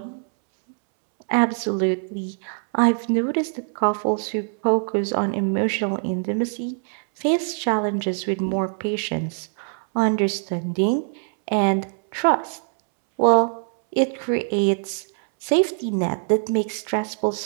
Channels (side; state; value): left; silent; 62 dB below the other